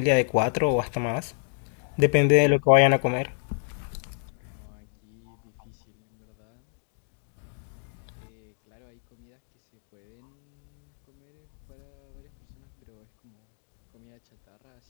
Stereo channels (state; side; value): silent; right; digital silence